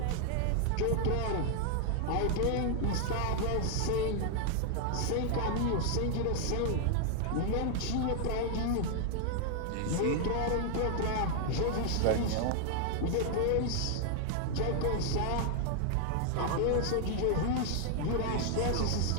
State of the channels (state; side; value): different; both; correlation 0.00